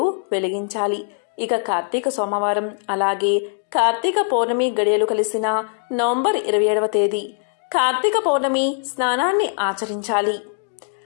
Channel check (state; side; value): silent; right; digital silence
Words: వెలిగించాలి. ఇక కార్తీక సోమవారం అలాగే కార్తీక పౌర్ణమి గడియలు కలిసిన నవంబర్ 27వ తేదీ కార్తీక పౌర్ణమి స్నానాన్ని ఆచరించాలి.